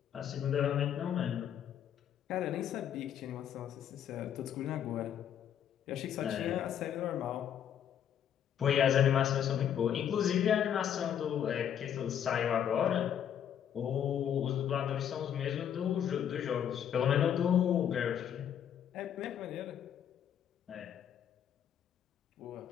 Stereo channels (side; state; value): right; quieter; 9.3 dB